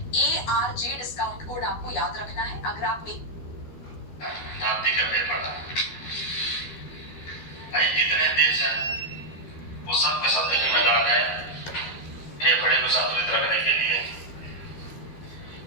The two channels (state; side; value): late; right; 13 ms